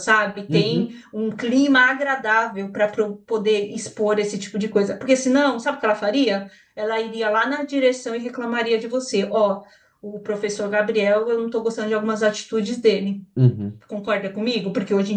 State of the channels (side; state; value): both; identical; correlation 1.00